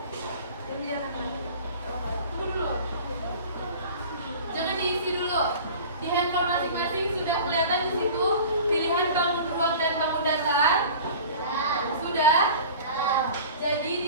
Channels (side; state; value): both; inverted; correlation -0.40